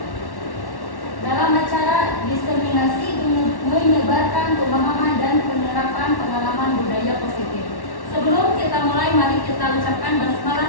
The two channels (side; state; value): right; late; 1.1 ms